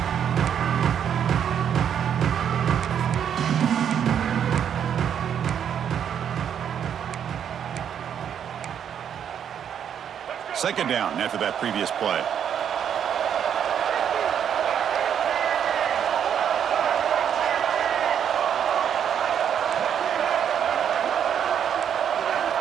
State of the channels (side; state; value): left; quieter; 8.7 dB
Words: Second down after that previous play.